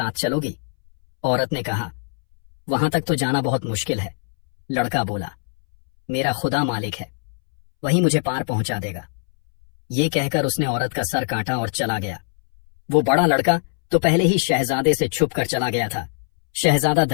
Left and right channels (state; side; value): silent; right; 64 dB below the other